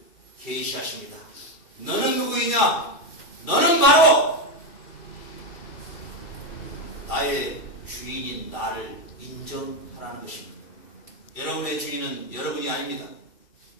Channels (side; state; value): right; late; 2.4 ms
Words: 계시하십니다. 너는 누구이냐? 너는 바로 나의 주인인 나를 인정하라는 것입니다. 여러분의 주인은 여러분이 아닙니다.